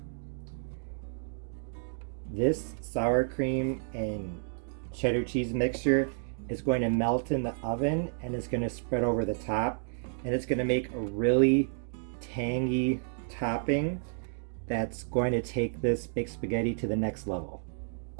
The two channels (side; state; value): left; silent; digital silence